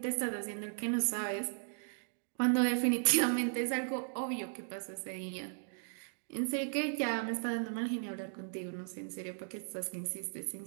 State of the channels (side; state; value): left; silent; digital silence